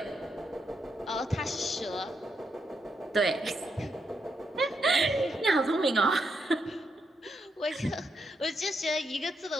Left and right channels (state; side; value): normal; both; correlation 0.81